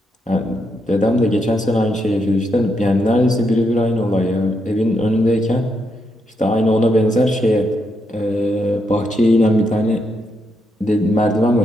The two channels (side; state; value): both; normal; correlation 0.80